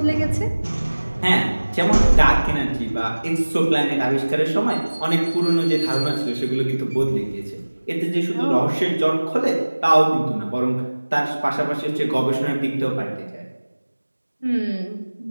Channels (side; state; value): both; inverted; correlation -1.00